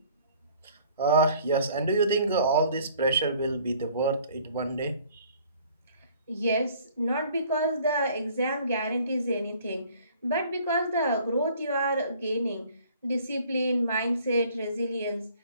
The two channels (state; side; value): inverted; both; correlation -0.55